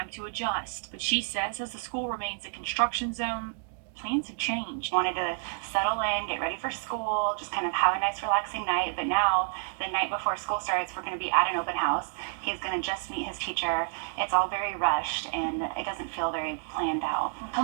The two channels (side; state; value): left; silent; digital silence